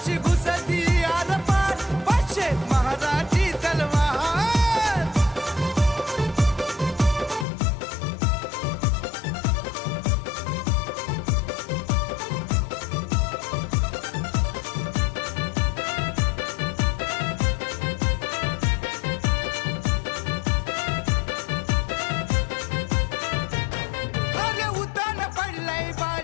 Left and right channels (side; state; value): right; drops out; at 7.5 s